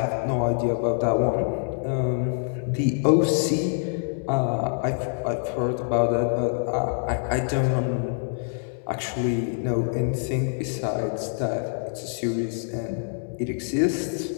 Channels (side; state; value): right; silent; 61 dB below the other